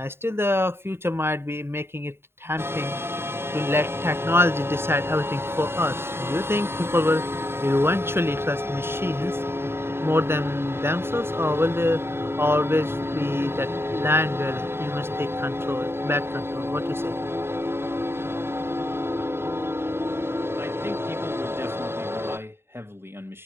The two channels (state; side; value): late; left; 0.11 ms